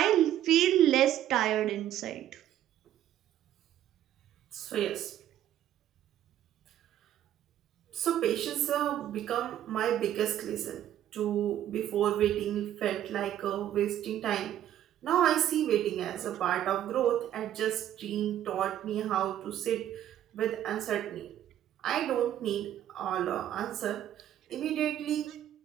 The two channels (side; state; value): left; quieter; 11.6 dB